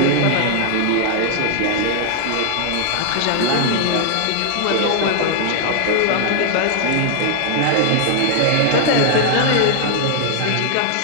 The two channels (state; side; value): different; both; correlation 0.00